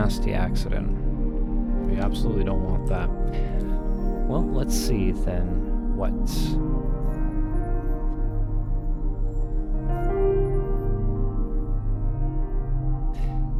accident. We absolutely don't want that. Well, let's see then what's...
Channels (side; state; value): both; identical; correlation 1.00